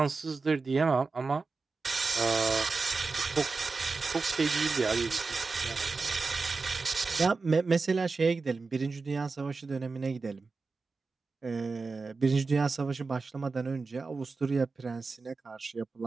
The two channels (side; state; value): left; quieter; 4.2 dB